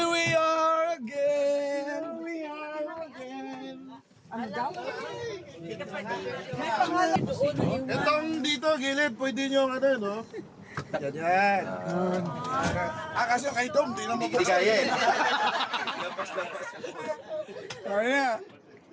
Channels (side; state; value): both; identical; correlation 1.00